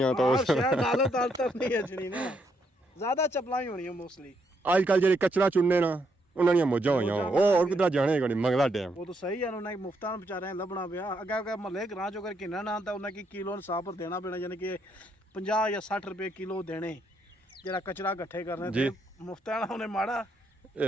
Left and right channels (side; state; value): both; normal; correlation 0.75